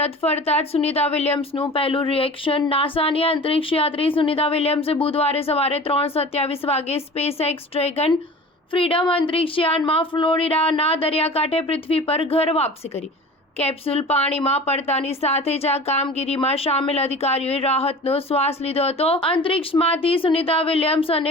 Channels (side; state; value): both; normal; correlation 0.39